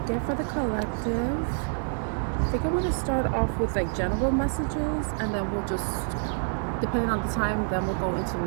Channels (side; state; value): left; silent; 60 dB below the other